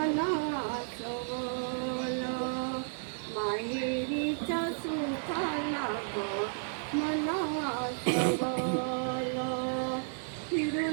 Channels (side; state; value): left; silent; 56 dB below the other